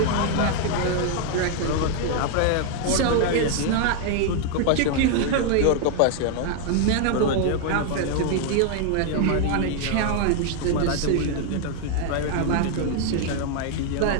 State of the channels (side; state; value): both; different; correlation 0.00